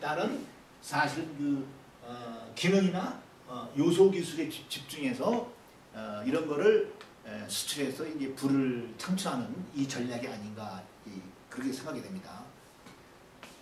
사실 그 기능이나 요소 기술에 집중해서 이런 거를 수출해서 이제 부를 창출하는 이 전략이 아닌가 그렇게 생각이 됩니다.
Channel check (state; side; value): identical; both; correlation 1.00